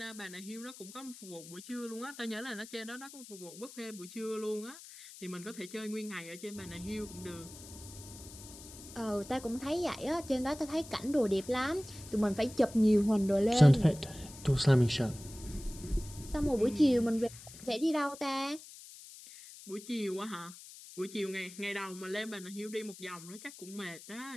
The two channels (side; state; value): left; noise; hiss, 16 dB below the sound